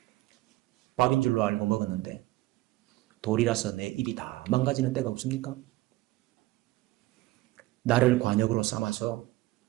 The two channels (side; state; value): left; quieter; 18.4 dB